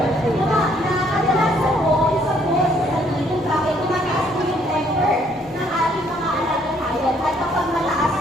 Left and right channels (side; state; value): both; normal; correlation 0.66